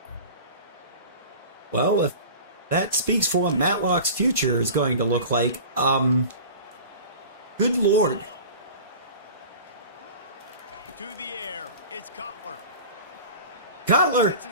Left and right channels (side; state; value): both; inverted; correlation -0.38